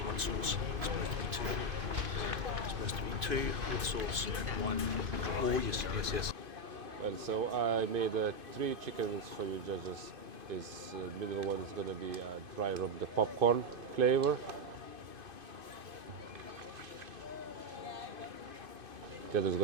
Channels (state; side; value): late; left; 2.5 ms